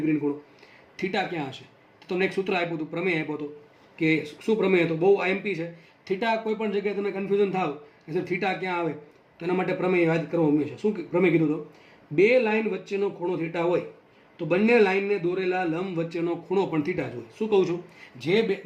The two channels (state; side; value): identical; both; correlation 1.00